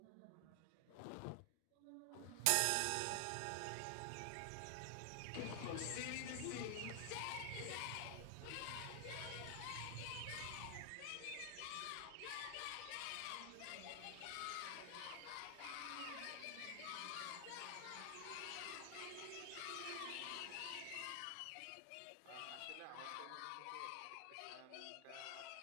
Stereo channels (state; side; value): different; both; correlation 0.00